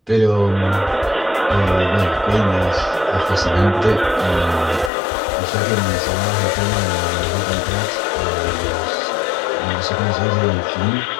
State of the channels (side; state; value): right; drops out; at 4.9 s